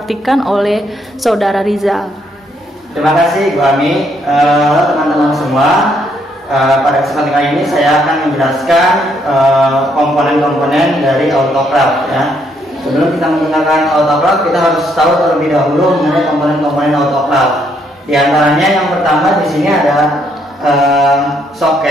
oleh Saudara Rizal. Terima kasih Bu Ami. Halo teman-teman semua. Pada kesempatan kali ini saya akan menjelaskan komponen-komponen dari autoclave ya. Sebelum kita menggunakan autoclave, kita harus tahu terlebih dahulu mengenai komponen-komponen autoclave. Di antaranya yang pertama di sini ada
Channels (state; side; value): normal; both; correlation 0.72